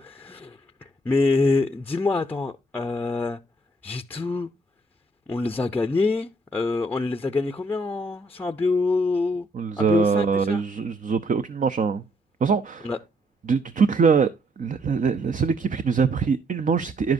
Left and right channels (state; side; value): normal; both; correlation 0.69